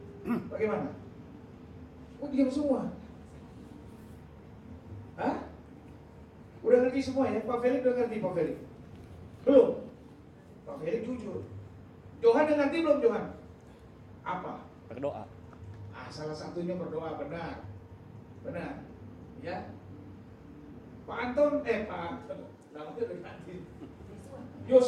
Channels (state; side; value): identical; both; correlation 1.00